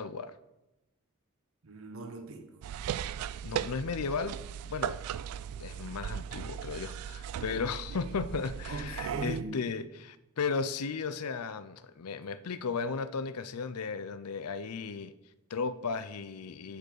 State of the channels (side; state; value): both; normal; correlation -0.06